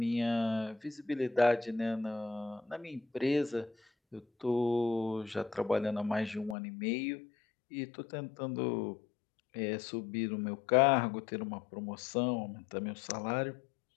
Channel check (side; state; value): right; drops out; at 6.6 s